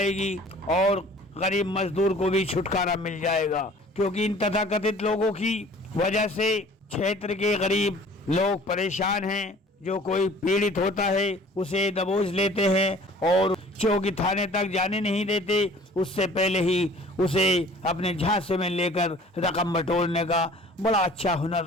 और गरीब मजदूर को भी छुटकारा मिल जाएगा, क्योंकि इन तथाकथित लोगों की वजह से क्षेत्र के गरीब लोग परेशान हैं। जो कोई पीड़ित होता है उसे दबोच लेते हैं और चौकी थाने तक जाने नहीं देते, उससे पहले ही उसे अपने झांसे में लेकर रकम बटोरने का बड़ा अच्छा हुनर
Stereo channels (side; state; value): both; normal; correlation 0.49